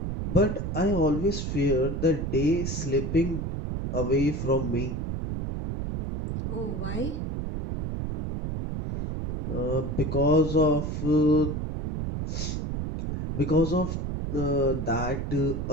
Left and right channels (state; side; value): noise; right; rumble, 3 dB below the sound